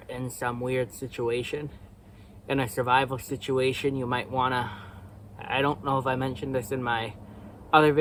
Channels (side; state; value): both; identical; correlation 1.00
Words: in some weird situation. In a survival situation, you might want to, I don't know if I mentioned this in my other